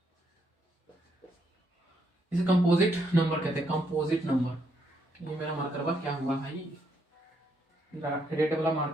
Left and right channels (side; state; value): both; normal; correlation 0.75